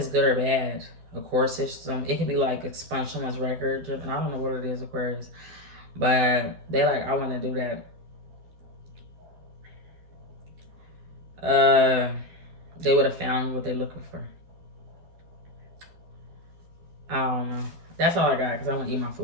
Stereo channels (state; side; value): late; left; 12 ms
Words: good or bad. Of course, it could be like expunge someone's record. And I don't know what it is, Aquarius. But they like, I want to do that. They would have found what they're looking for. I don't know. That's all I got because I want to eat my